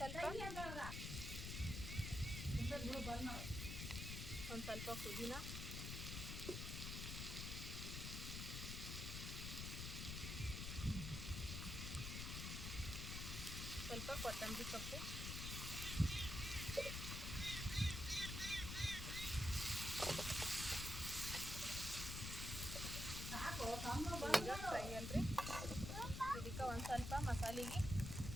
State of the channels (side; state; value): left; noise; rumble, 4 dB below the sound